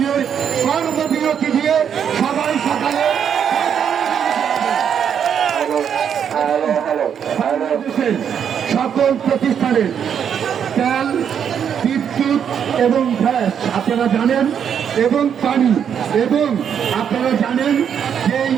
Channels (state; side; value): quieter; left; 8.1 dB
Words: কর্মবিরতি দিয়ে সবাই সকালে বাংলাদেশের সকল প্রতিষ্ঠানের তেল, বিদ্যুৎ এবং গ্যাস আপনারা জানেন, এবং পানি, এবং আপনারা জানেন যেই